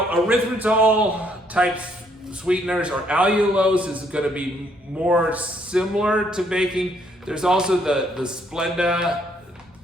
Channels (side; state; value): both; normal; correlation 0.69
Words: type sweeteners or allulose is going to be more similar to baking. There's also the Splenda